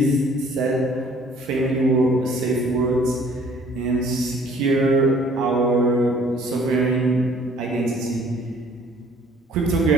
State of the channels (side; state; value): both; normal; correlation 0.56